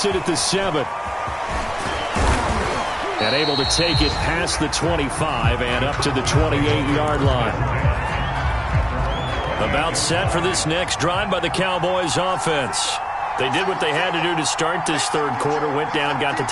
it at the 7. And able to take it past the 25 and up to the 28-yard line. About set for this next drive by the Cowboys offense. They did what they had to do to start this third quarter. Went down, got the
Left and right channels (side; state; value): both; identical; correlation 1.00